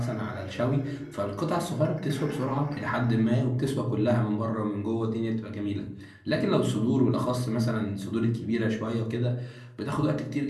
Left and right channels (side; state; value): both; identical; correlation 1.00